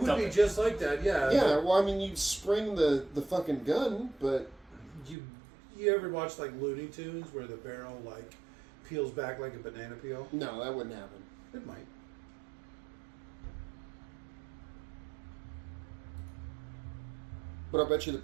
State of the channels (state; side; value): drops out; left; at 5.2 s